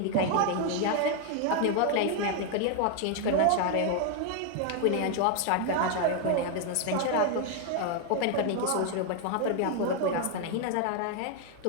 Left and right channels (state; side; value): different; both; correlation 0.01